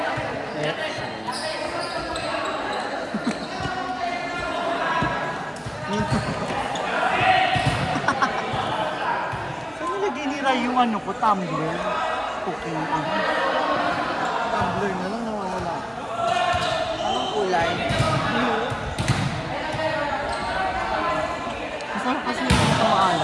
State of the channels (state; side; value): identical; both; correlation 1.00